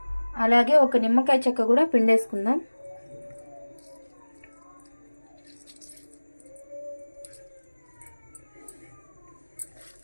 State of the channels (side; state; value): both; inverted; correlation -1.00